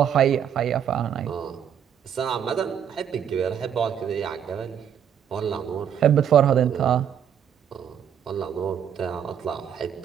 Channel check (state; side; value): quieter; left; 8.7 dB